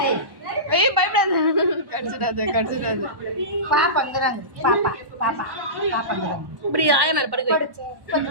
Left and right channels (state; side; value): late; left; 1.1 ms